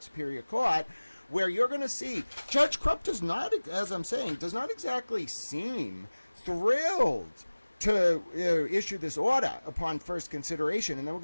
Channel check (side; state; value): both; inverted; correlation -1.00